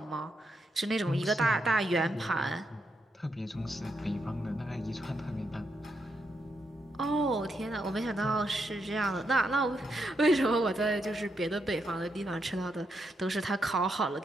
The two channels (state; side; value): normal; both; correlation 0.81